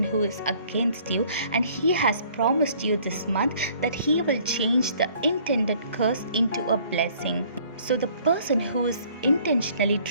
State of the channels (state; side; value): inverted; both; correlation -0.57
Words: who is against you, and He has promised you this month that He will change the intended curse into a blessing. So the person who is intentionally